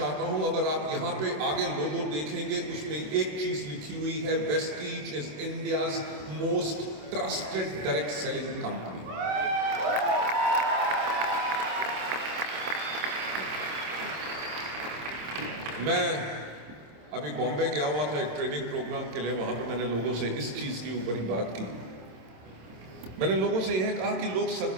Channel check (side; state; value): left; late; 27 ms